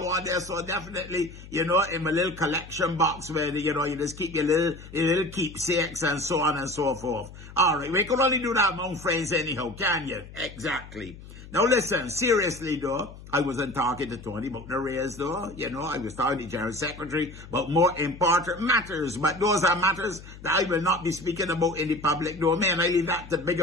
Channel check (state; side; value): noise; left; hum, 16 dB below the sound